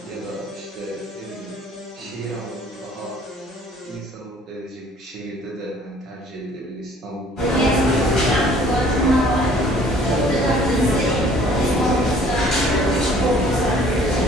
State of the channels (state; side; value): normal; both; correlation 0.55